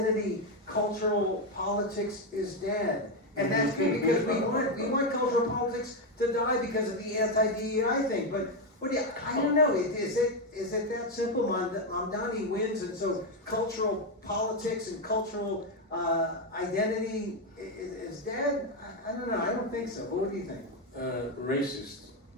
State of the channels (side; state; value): both; normal; correlation 0.06